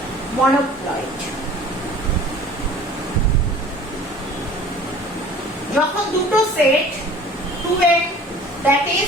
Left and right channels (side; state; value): both; normal; correlation 0.46